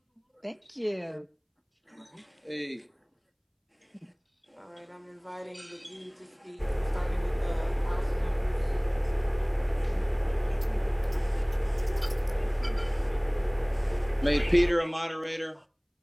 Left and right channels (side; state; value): both; identical; correlation 1.00